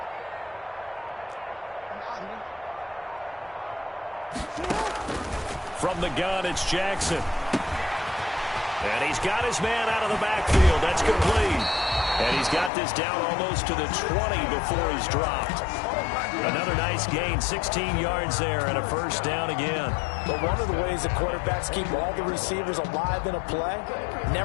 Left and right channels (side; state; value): right; drops out; at 12.7 s